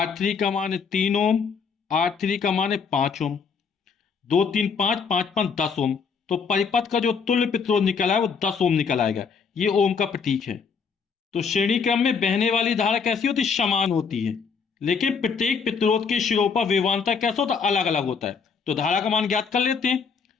का मान है 3 ओम, R3 का मान है 5 ओम। 2 3 5 5 5 10 ओम। तो परिपथ का जो तुल्य प्रतिरोध निकला है वो 10 ओम निकल आएगा। ये ओम का प्रतीक है। तो श्रेणी क्रम में बहने वाली धारा कैसी होती है? समान होती है, लेकिन प्रत्येक प्रतिरोध के सिरों पर विभवांतर कैसा होता है? अलग अलग होता है। तो धारा का मान ज्ञात कर लेते हैं।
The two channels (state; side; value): quieter; right; 5.8 dB